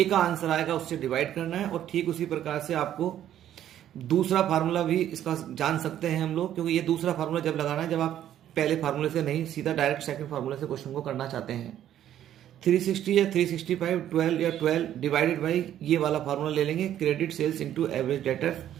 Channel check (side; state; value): left; quieter; 11.3 dB